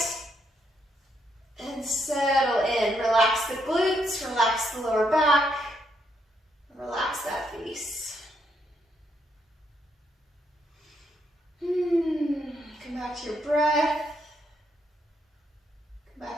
and settle in. Relax the glutes, relax the lower back, relax that face. Come back to your breath. Come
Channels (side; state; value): both; normal; correlation 0.76